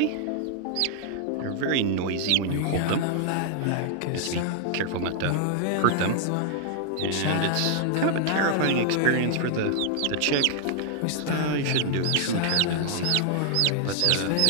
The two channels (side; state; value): both; different; correlation 0.00